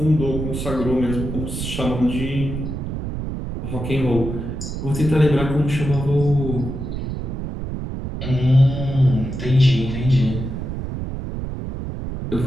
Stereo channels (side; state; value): right; noise; rumble, 5 dB below the sound